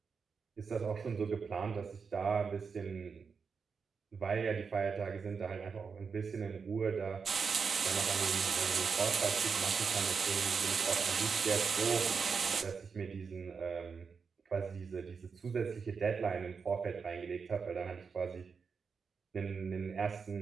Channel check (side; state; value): left; quieter; 5.6 dB